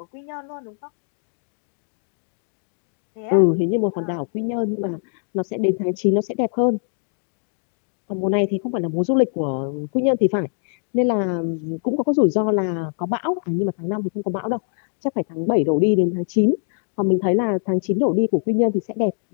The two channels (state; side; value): silent; right; digital silence